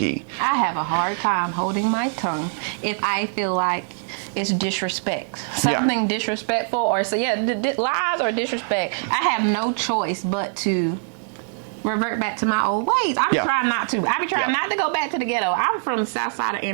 I have a hard time holding my tongue if I feel like it's disrespect. Something disrespectful or lies or disrespect. I have no choice but to revert back to my old ways. I'm trying not to. I be trying not to go back to the ghetto. I'm from the south side of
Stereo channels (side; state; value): left; silent; digital silence